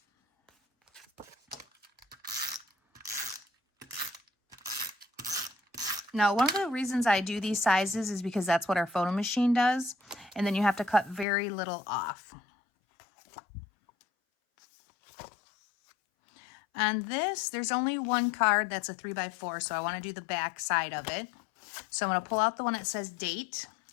Now, one of the reasons I do these sizes is because that's what our photo machine does. And then you have to cut very little off. On this, there's only one card that's a 3x4, so I want to do the back side of it. So I'm going to pull out the one that says date.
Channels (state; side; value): drops out; right; at 11.2 s